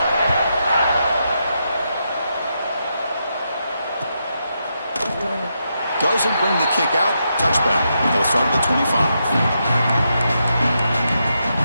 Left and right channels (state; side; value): inverted; both; correlation -0.83